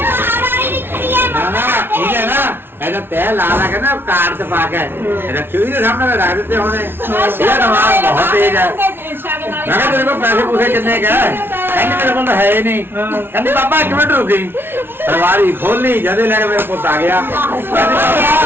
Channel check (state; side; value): late; left; 0.11 ms